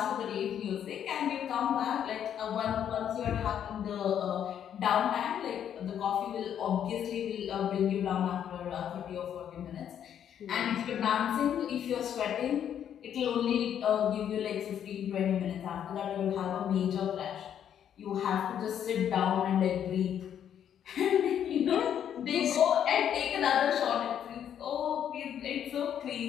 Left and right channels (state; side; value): quieter; right; 9.4 dB